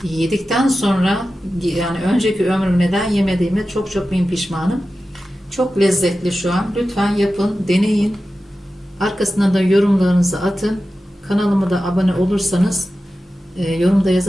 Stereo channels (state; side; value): normal; both; correlation 0.93